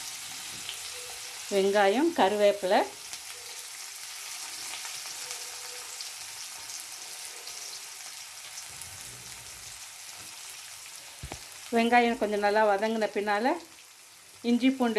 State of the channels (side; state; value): both; identical; correlation 1.00